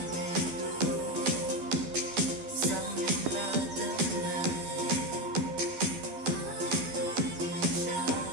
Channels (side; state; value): left; late; 12 ms